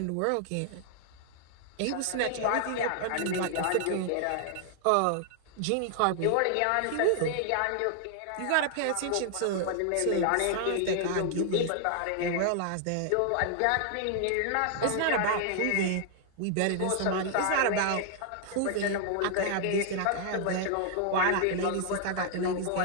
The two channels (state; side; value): different; both; correlation 0.00